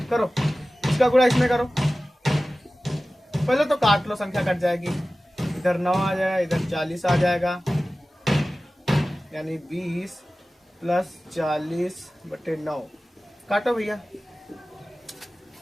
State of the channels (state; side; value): normal; both; correlation 0.96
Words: करो, इसका गुणा इसमें करो। पहले तो काट लो, संख्या कट जाएगी, इधर 9 आ जाएगा, इधर 40 आ जाएगा, यानी 20 प्लस 40 बटे 9। काटो भैया,